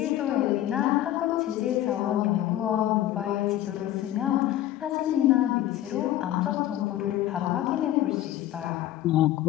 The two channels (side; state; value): right; quieter; 13.3 dB